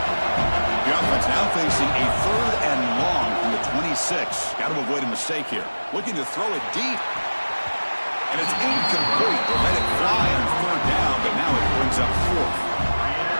The offense now facing a 3rd and long from the 26. Got to avoid a mistake here. Looking to throw it deep. And it's incomplete. They'll let it fly on 3rd down, but now it brings up 4th.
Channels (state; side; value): inverted; both; correlation -1.00